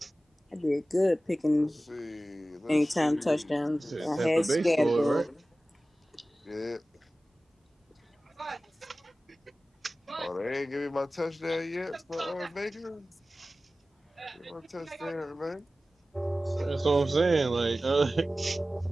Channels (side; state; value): both; normal; correlation 0.96